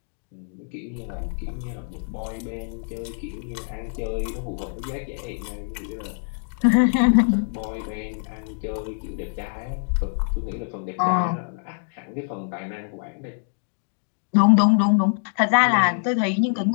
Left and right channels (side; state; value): right; silent; digital silence